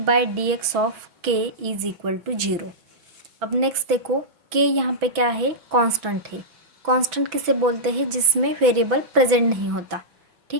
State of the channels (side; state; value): left; late; 6.0 ms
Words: dx of k is equal to 0। अब नेक्स्ट देखो, k यहाँ पे क्या है, कांस्टेंट है। कांस्टेंट किसे बोलते हैं, जिसमें वेरिएबल प्रेजेंट नहीं होता।